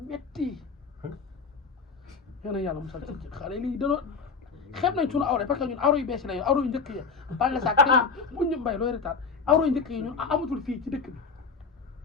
yéen a yàlla musal ci xale yi léegi danoo xeeb nañ suñu awra parce que ñun awra yu bees la awra yu njëkk yi ba nga sax bu ñu mbay looy retaat awra yu njëkk yi ñun amatul fii ci dëkk bi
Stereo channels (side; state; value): right; quieter; 5.0 dB